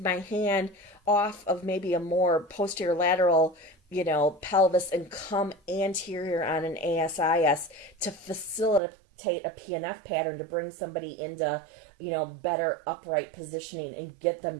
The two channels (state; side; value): drops out; left; at 8.8 s